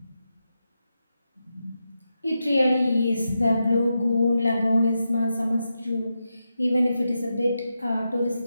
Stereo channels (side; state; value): both; inverted; correlation -0.88